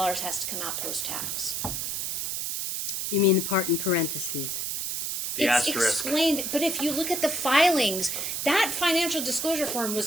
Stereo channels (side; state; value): right; noise; hiss, 2 dB below the sound